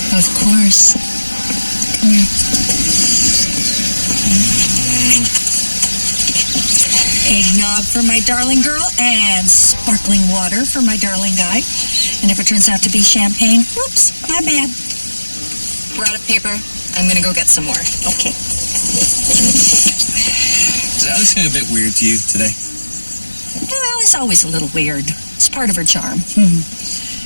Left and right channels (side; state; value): both; inverted; correlation -1.00